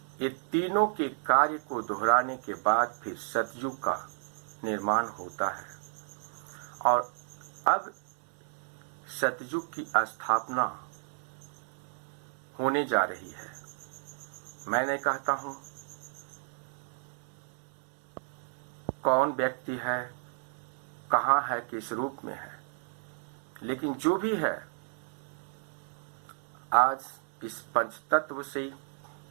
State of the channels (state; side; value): silent; left; digital silence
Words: ये तीनों के कार्य को दोहराने के बाद फिर सतयुग का निर्माण होता है और अब सतयुग की स्थापना होने जा रही है। मैंने कहता हूं, कौन व्यक्ति है, कहां है, किस रूप में है, लेकिन जो भी है आज इस पंचतत्व से